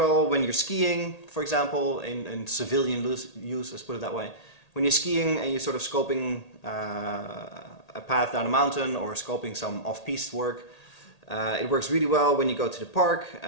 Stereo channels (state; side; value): late; right; 1.8 ms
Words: when you're skiing, for example, in civilian use, let's put it that way. When you're skiing and you're sort of scoping a path down a mountain or scoping some off-piste work, it works really well when you go to the park